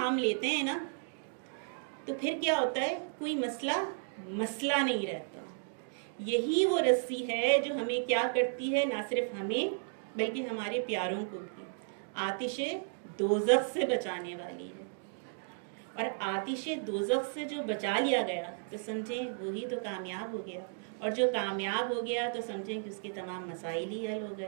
لیتے ہیں نا, تو پھر کیا ہوتا ہے, کوئی مسئلہ نہیں رہتا. یہی وہ رسی ہے جو ہمیں کیا کرتی ہے, نہ صرف ہمیں بلکہ ہمارے پیاروں کو بھی آتش دوزخ سے بچانے والی ہے. اور آتش دوزخ سے جو بچا لیا گیا تو سمجھیں وہی تو کامیاب ہو گیا, اور جو کامیاب ہو گیا تو سمجھیں کہ اس کے تمام مسائل ہی حل ہو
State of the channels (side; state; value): left; silent; digital silence